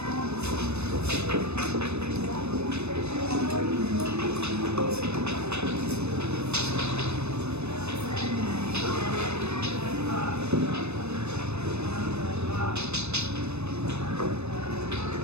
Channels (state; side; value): late; left; 0.81 ms